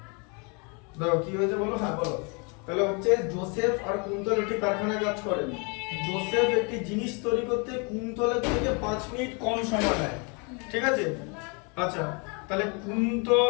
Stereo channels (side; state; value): right; quieter; 33.3 dB